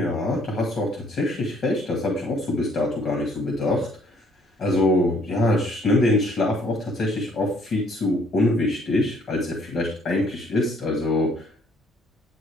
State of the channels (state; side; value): normal; both; correlation 0.63